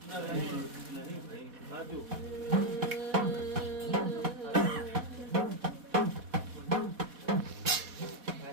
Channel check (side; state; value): left; late; 4.1 ms